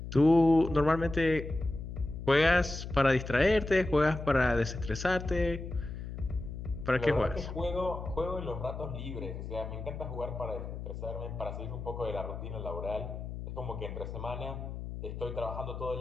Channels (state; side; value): noise; left; hum, 8 dB below the sound